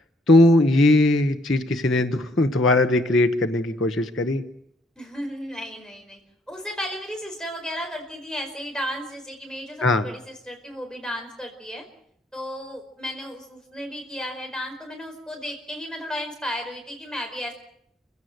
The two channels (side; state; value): both; normal; correlation 0.67